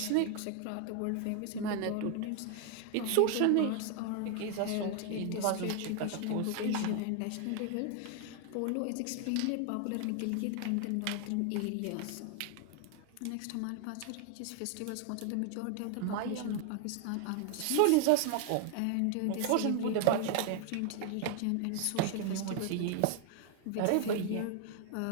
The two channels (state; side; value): different; both; correlation 0.00